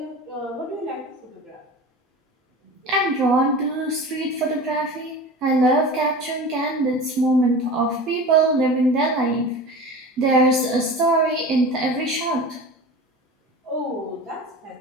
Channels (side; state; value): both; normal; correlation 0.34